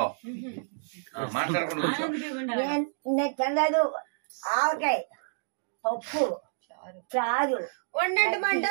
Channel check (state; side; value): silent; left; digital silence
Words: మాట్లాడకుండా తెల్లదు ఆవకాయ పప్పు చారు వండండి.